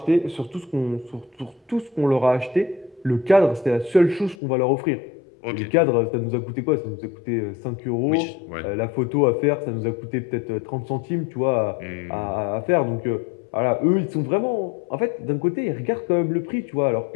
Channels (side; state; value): right; drops out; at 4.4 s